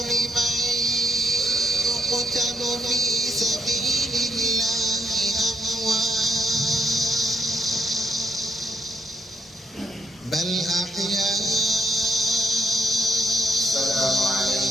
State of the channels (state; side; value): normal; both; correlation 0.72